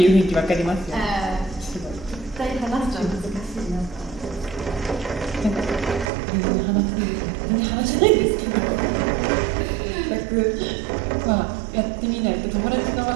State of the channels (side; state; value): left; drops out; at 6.1 s